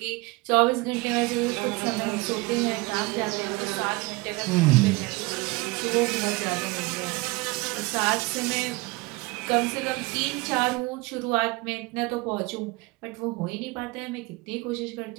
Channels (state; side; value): quieter; left; 23.8 dB